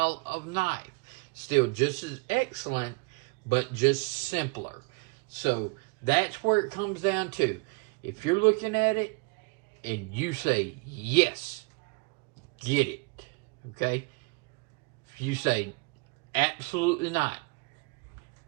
of knife. Still just as excellent, but just simpler. So that's where it comes down to. If you're looking at it and you say, yes, get it. Okay? If you say, absolutely not,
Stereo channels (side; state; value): left; quieter; 29.8 dB